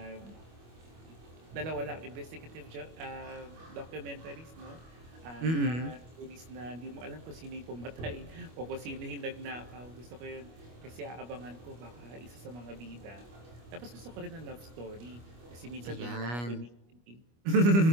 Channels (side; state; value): left; late; 25 ms